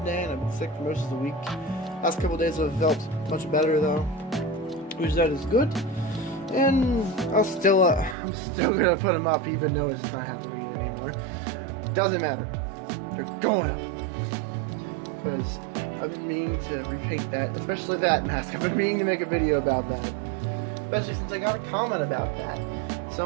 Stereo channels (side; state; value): left; drops out; at 8.2 s